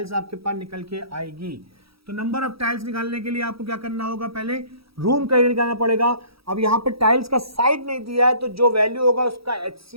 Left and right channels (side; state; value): left; late; 0.76 ms